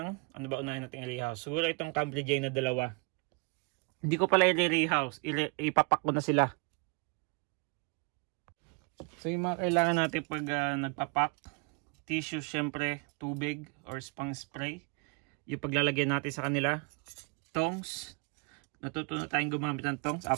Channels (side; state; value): left; quieter; 33.6 dB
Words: ano ba unahin natin i-rehouse? Siguro itong Cambridgei na dalawa. Hindi ko pala i-rehouse. Ipapak ko na sila. So, yung mga kailangan natin pag nagpapak. Tissue, syempre, tubig or spang spray. Yung paglalagyan natin sa kanila. Tongs. Natuto na tayong gumamit ng tongs